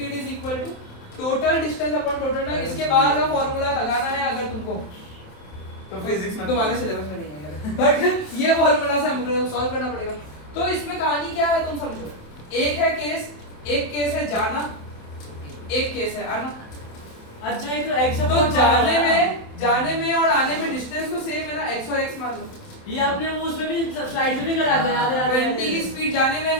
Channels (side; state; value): right; late; 27 ms